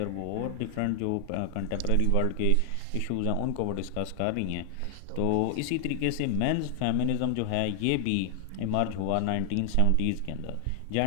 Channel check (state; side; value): different; both; correlation 0.00